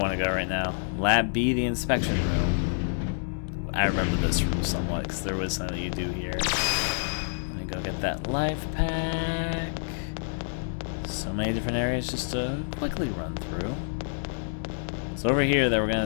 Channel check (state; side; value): silent; right; digital silence